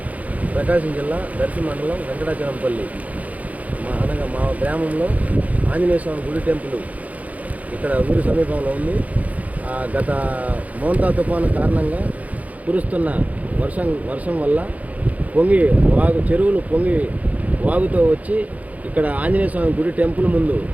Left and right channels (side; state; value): left; late; 0.072 ms